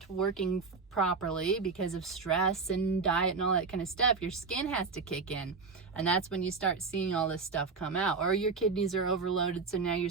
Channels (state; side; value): quieter; left; 4.7 dB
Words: working properly because of stress and diet and all that kind of stuff, your skin has to kick in. And that's when you start seeing all this stuff come out. Or your kidneys are overloaded, so now your